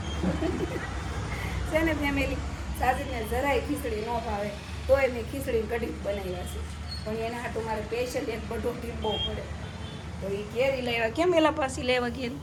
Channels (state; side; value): identical; both; correlation 1.00